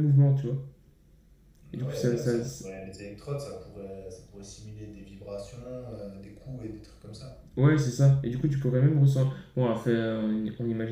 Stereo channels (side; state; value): both; identical; correlation 1.00